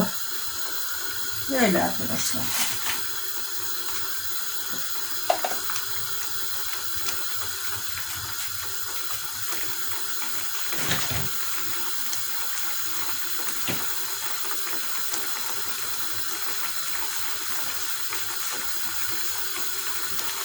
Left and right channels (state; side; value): normal; both; correlation 0.96